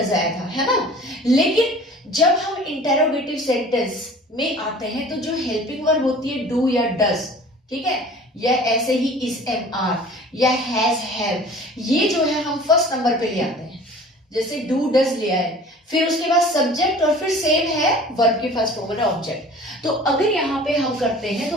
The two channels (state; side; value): normal; both; correlation 0.45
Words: आया था, है ना। लेकिन जब हम इंटेरोगेटिव सेंटेंस में आते हैं तो जो हेल्पिंग वर्ब होती है डू या डज, ठीक है, या ऐसे ही इज एम आर या हैज हैव, ये जो है हम फर्स्ट नंबर पे ले आते हैं। जैसे डू डज लिया है, फिर उसके बाद सब्जेक्ट और फिर सेम है वर्ब की फर्स्ट फॉर्म है ऑब्जेक्ट। तो अगर यहाँ पे हम करते हैं